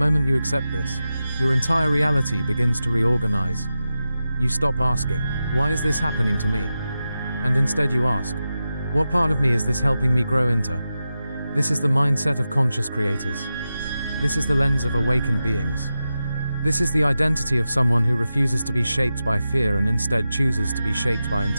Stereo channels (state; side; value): inverted; both; correlation -0.91